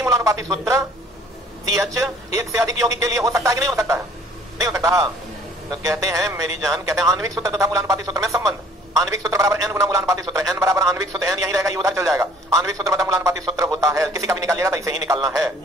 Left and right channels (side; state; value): both; normal; correlation 0.55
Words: मूलानुपाती सूत्र CH एक से अधिक यौगिक के लिए हो सकता है कि नहीं हो सकता है? नहीं हो सकता। तो कहते हैं मेरी जान, कहते हैं आणविक सूत्र तथा मूलानुपाती सूत्र में संबंध। आणविक सूत्र बराबर n गुना मूलानुपाती सूत्र, n बराबर आणविक सूत्र n यही रहेगा, ये उधर चल जाएगा। आणविक सूत्र बराबर मूलानुपाती सूत्र होता है, किसी का भी निकालिएगा तो इसे ही निकालना है।